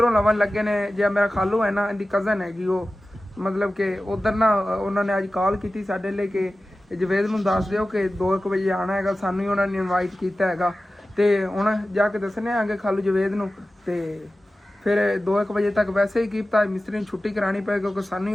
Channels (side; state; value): both; normal; correlation 0.95